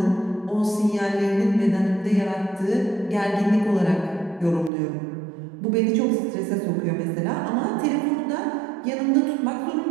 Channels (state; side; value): drops out; left; at 4.7 s